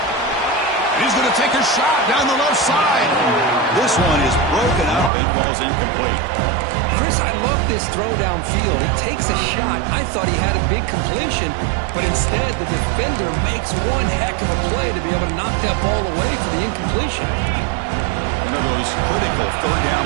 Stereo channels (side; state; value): left; drops out; at 5.1 s